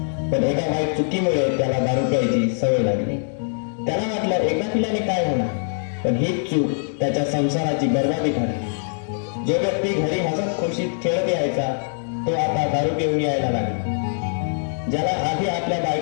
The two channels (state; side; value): silent; right; digital silence